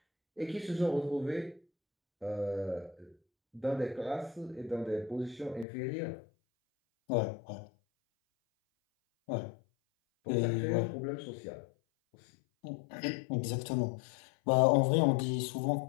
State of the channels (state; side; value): drops out; right; at 5.7 s